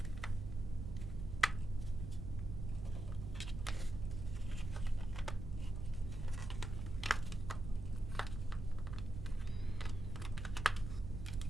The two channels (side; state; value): right; noise; rumble, 5 dB below the sound